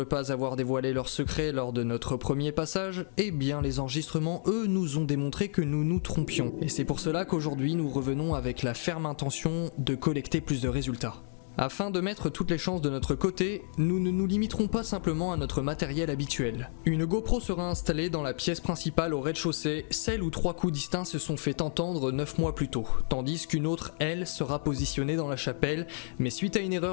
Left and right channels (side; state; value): right; silent; digital silence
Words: pas avoir dévoilé leurs secrets lors de notre premier passage, eh bien les enregistrements, eux, nous ont démontré que nous nous trompions. Et c'est pour cela qu'aujourd'hui nous revenons avec la ferme intention de collecter plus de résultats. Afin de mettre toutes les chances de notre côté, nous ne nous limiterons pas simplement à notre matériel habituel. Une GoPro sera installée dans la pièce principale au rez-de-chaussée, celle où 3 coups distincts se sont fait entendre 9 mois plus tôt, tandis qu'une autre, elle, sera positionnée dans la chapelle, mais suite à une